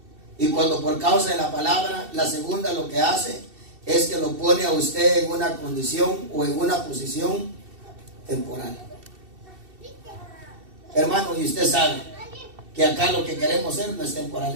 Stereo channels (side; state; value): left; late; 2.7 ms